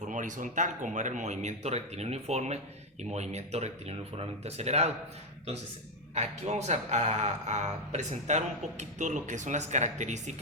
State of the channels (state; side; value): normal; both; correlation 0.06